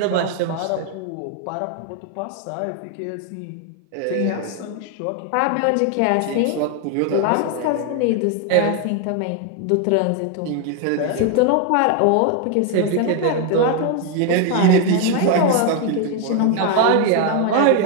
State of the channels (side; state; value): both; different; correlation 0.01